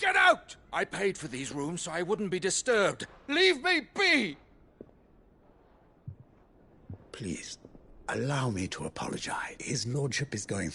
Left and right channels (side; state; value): both; identical; correlation 1.00